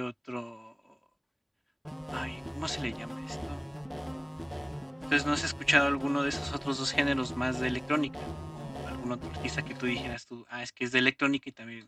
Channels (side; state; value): both; identical; correlation 1.00